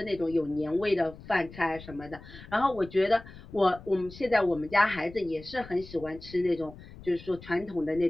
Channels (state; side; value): noise; left; rumble, 17 dB below the sound